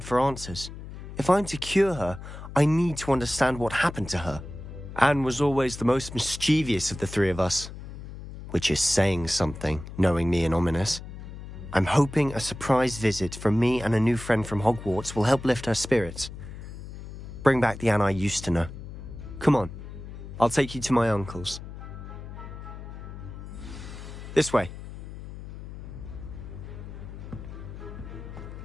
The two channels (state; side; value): noise; left; hum, 12 dB below the sound